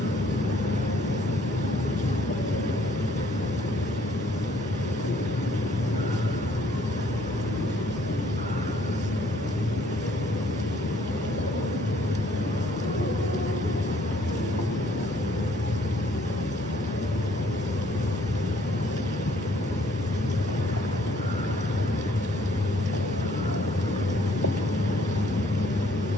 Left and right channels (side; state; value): both; normal; correlation 0.62